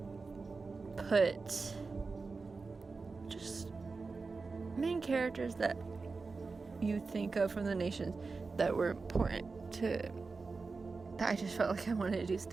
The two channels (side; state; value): left; quieter; 4.2 dB